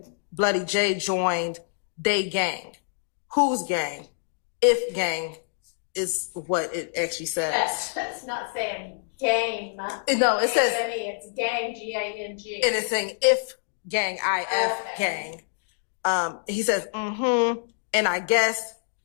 Bloody J joined they gang. Whose gang? If gang is what it actually says. That's not saying game. No, it says, It's gang, G-A-N-G. and it's saying if gang, I-F gang. He says, and I guess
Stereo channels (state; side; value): silent; right; digital silence